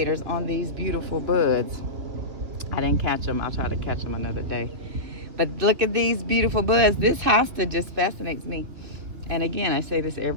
on these beautiful buds. I didn't catch them. I'll try to catch them another day. But look at these beautiful buds. This hosta just fascinates me. And again, I say this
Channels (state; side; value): late; left; 2.6 ms